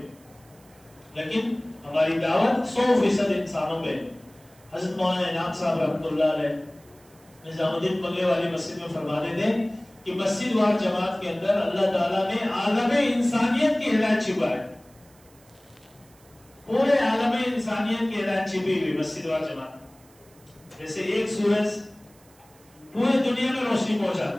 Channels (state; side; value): noise; right; hiss, 29 dB below the sound